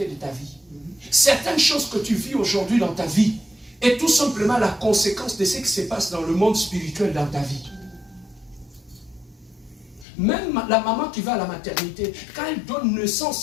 de ta vie. Certaines choses que tu vis aujourd'hui dans ta vie est tout simplement la conséquence de ce qui se passe dans le monde spirituel dans ta vie. Même la maman qui va à la maternité, quand elle donne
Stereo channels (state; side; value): drops out; right; at 10.1 s